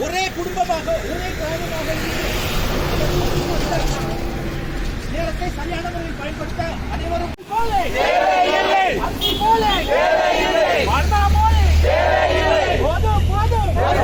ஒரே குடும்பமாக ஒரே கிராமமாக நேரத்தை சரியான முறையில் பயன்படுத்த அனைவரும்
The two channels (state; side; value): identical; both; correlation 1.00